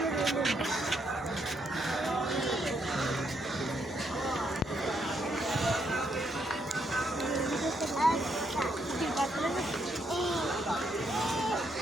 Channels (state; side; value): normal; both; correlation 0.76